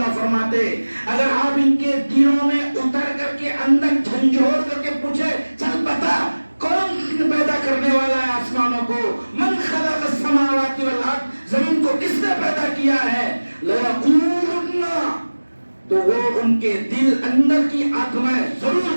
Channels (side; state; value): both; inverted; correlation -1.00